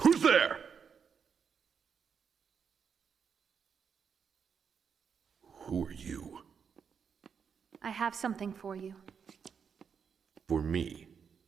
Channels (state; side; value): quieter; left; 6.7 dB